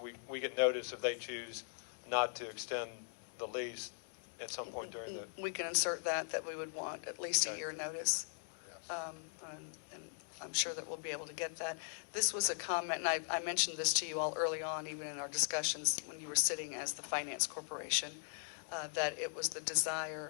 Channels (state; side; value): silent; right; digital silence